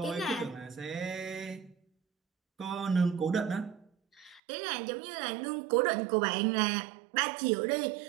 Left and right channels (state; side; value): drops out; left; at 4.4 s